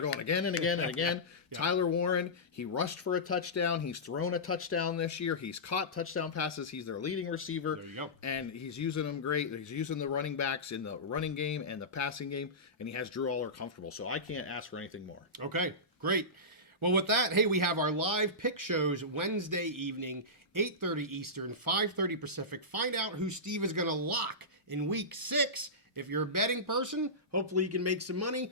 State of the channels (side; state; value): both; normal; correlation -0.17